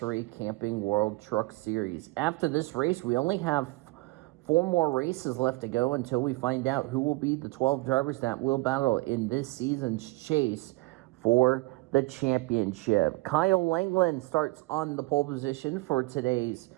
Camping World Truck Series. After this race, we only have 4 more races left to go until we find out who will be the 12 drivers that will battle in this season's chase for the championship. Kyle Langland starts on the pole position for today's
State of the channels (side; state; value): left; quieter; 22.8 dB